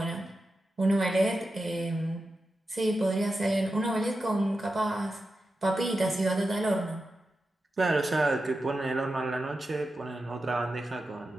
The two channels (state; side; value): normal; both; correlation 0.91